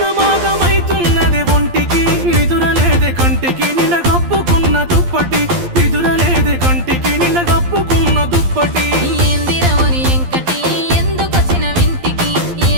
ఒంటికి నిదురలేదే కంటికి నిన్న కప్పుకున్న దుప్పటి నిదురలేదే కంటికి నిన్న కప్పుకున్న దుప్పటి ఏందిరవరి ఎంకటి ఎందుకొచ్చిన వింటికి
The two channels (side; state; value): left; late; 12 ms